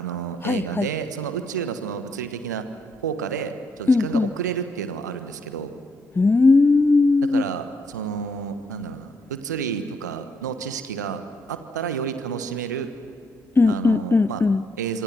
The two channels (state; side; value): normal; both; correlation 0.74